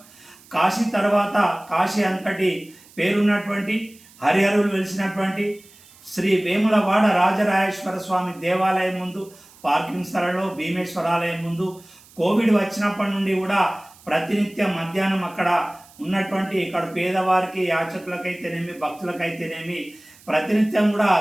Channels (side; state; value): right; noise; hiss, 25 dB below the sound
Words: కాశీ తర్వాత కాశీ అంతటి పేరున్నటువంటి హరిహరులు వెలిసినటువంటి శ్రీ వేములవాడ రాజరాజేశ్వర స్వామి దేవాలయం ముందు పార్కింగ్ స్థలంలో భీమేశ్వరాలయం ముందు కోవిడ్ వచ్చినప్పటి నుండి కూడా ప్రతినిత్యం మధ్యాహ్నం అక్కడ ఉన్నటువంటి ఇక్కడ పేదవారికి యాచకులకైతేనేమి భక్తులకైతేనేమి ప్రతినిత్యం కూడా